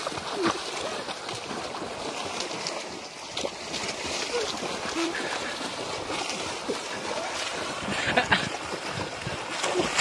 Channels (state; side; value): identical; both; correlation 1.00